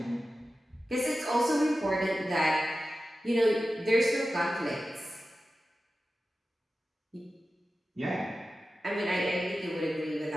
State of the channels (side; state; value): both; normal; correlation 0.94